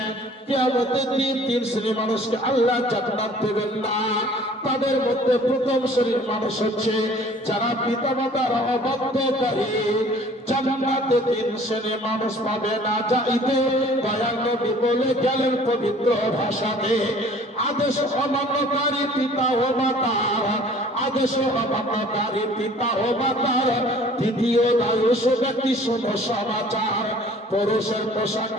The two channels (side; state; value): both; normal; correlation 0.52